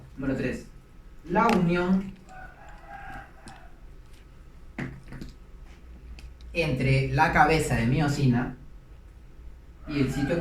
Número 3. La unión entre la cabeza de miosina y el sitio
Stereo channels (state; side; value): identical; both; correlation 1.00